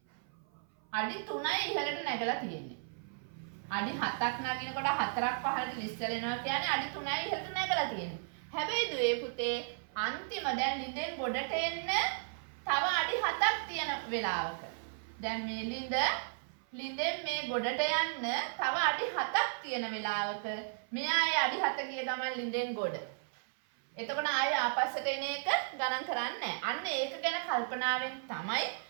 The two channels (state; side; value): silent; left; 55 dB below the other